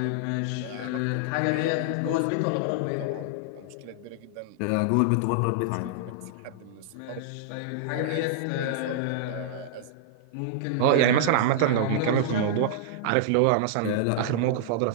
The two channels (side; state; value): both; different; correlation -0.01